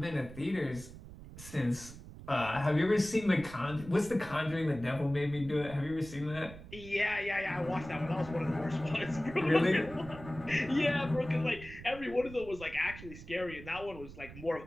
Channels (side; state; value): right; noise; rumble, 15 dB below the sound